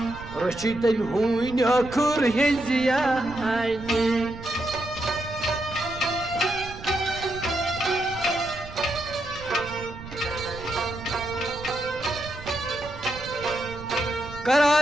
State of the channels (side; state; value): right; noise; rumble, 14 dB below the sound